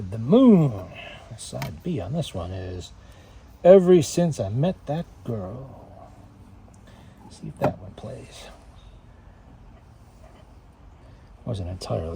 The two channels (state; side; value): identical; both; correlation 1.00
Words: moon. Side B on this one is Ever Since I Met That Girl. See if that one plays. Wasn't